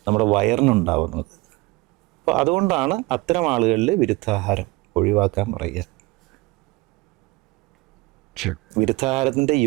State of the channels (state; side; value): quieter; left; 22.6 dB